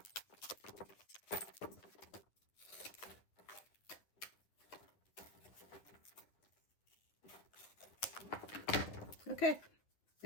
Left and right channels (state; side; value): late; right; 9.5 ms